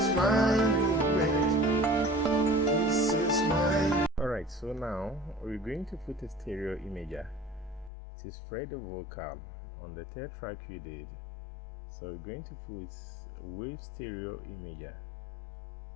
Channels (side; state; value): right; drops out; at 7.9 s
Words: my movement. This is my. Alright, so now we're going to put a stereo imager to spread the vocal on the third track we did. So we're going to put wave stereo imager